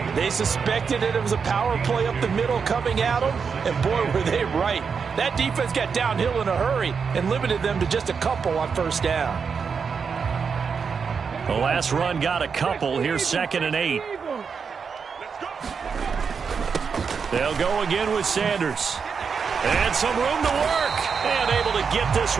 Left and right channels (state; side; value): quieter; left; 5.9 dB